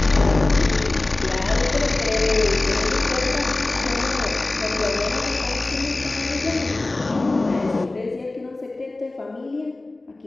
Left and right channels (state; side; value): quieter; right; 3.0 dB